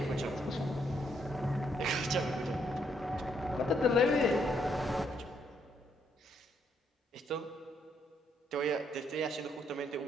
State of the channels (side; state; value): both; normal; correlation 0.73